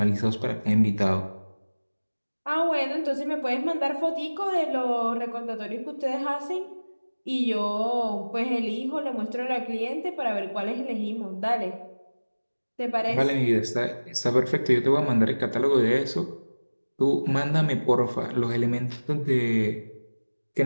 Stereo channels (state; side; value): inverted; both; correlation -1.00